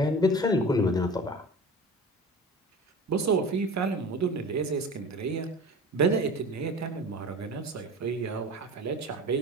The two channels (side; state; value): both; normal; correlation 0.36